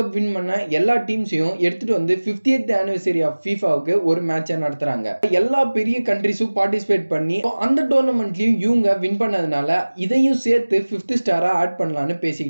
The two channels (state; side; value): inverted; both; correlation -1.00